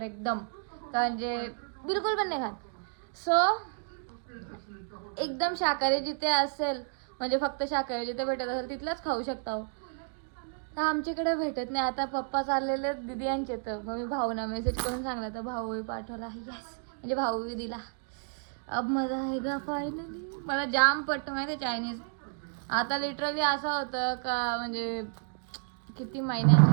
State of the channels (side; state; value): left; silent; 57 dB below the other